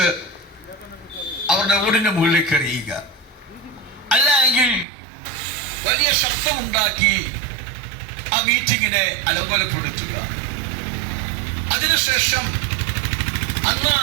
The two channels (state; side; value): drops out; left; at 4.9 s